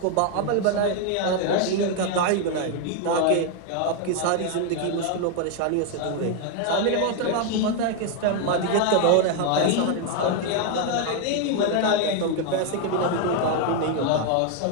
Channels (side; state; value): both; different; correlation 0.01